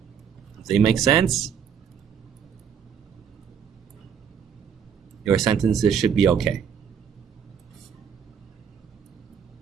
If they make sense, your sentences should be okay.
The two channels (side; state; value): left; quieter; 7.6 dB